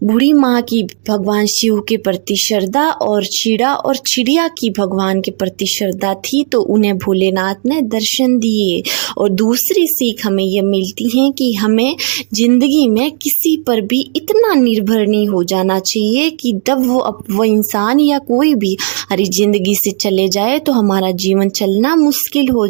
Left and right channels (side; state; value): left; silent; digital silence